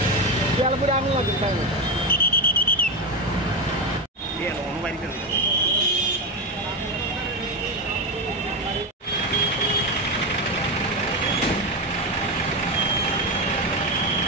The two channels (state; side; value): normal; both; correlation 0.14